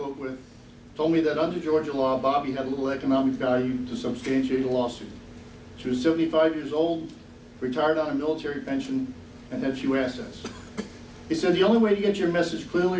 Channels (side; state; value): both; identical; correlation 1.00